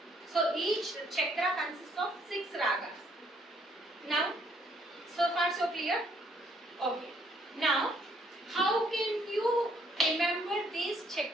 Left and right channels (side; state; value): both; normal; correlation 0.66